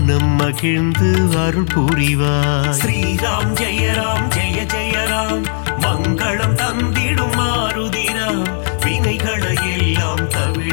மகிழ்ந்து அருள் புரிவார். ஸ்ரீராம் ஜெயராம் ஜெய ஜெயராம் மங்களம் தந்திடும் மாருதிராம்.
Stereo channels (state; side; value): silent; right; 60 dB below the other